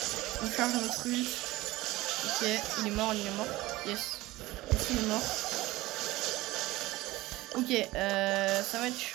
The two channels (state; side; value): quieter; left; 18.7 dB